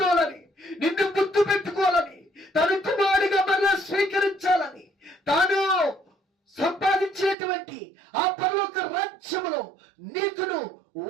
నిన్ను గుర్తు పెట్టుకోవాలని, తను కుమారుడిగా మరలా స్వీకరించాలని, తాను సంపాదించినటువంటి ఆ పరలోక రాజ్యములో నీకును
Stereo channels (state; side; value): drops out; left; at 7.4 s